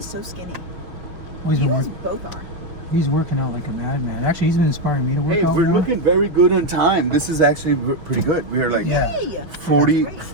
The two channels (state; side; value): late; left; 5.8 ms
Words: so skinny. Well, he's You been guys work- both are. He's working out like a madman. Actually, he's been inspiring me to work Hey, out we're more. looking very good on time. This is actually pretty good. We're like Yeah. Yay! 40, That's great.